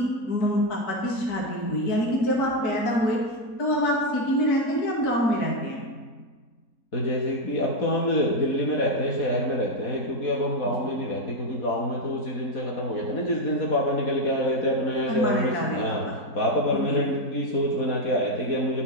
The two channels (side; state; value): right; late; 4.5 ms